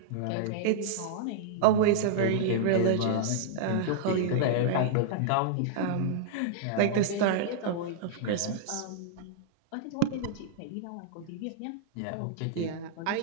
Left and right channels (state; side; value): different; both; correlation -0.02